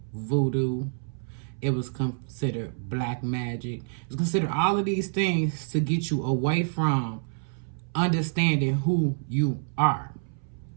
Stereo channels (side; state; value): left; silent; 60 dB below the other